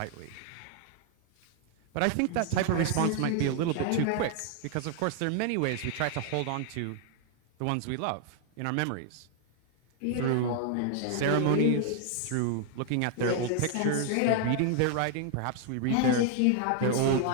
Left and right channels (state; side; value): different; both; correlation 0.00